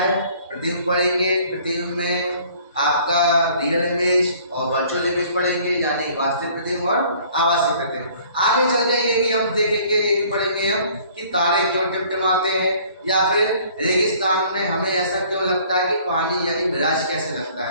प्रतिबिंब पढ़ेंगे, प्रतिबिंब में आपका रियल इमेज और वर्चुअल इमेज पढ़ेंगे, यानी वास्तविक प्रतिबिंब और आभासी प्रतिबिंब। आगे चल के ये भी हम देखेंगे, ये भी पढ़ेंगे हम कि तारे क्यों टिमटिमाते हैं, या फिर रेगिस्तान में हमें ऐसा क्यों लगता है कि पानी यानी मिराज कैसे लगता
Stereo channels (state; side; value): inverted; both; correlation -0.55